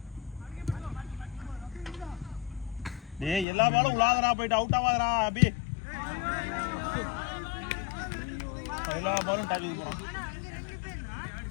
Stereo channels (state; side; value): drops out; right; at 3.5 s